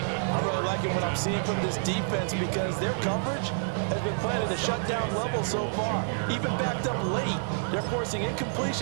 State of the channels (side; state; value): left; silent; digital silence